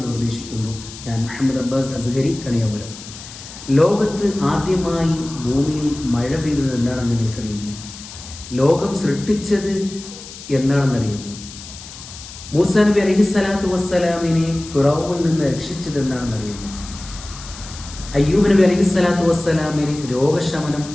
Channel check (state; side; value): noise; left; hiss, 15 dB below the sound